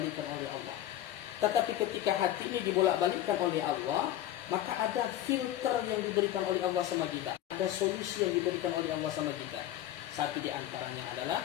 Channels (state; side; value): quieter; right; 12.8 dB